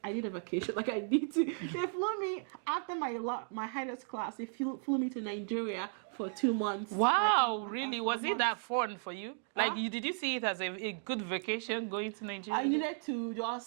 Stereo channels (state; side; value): silent; left; digital silence